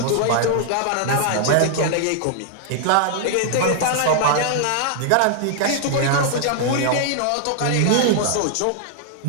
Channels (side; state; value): both; different; correlation -0.01